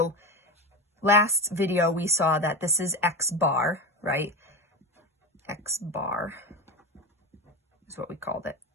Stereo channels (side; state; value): both; normal; correlation 0.21